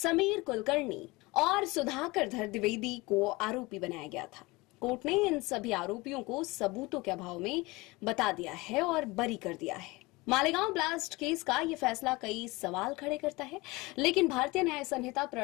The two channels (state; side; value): quieter; right; 23.0 dB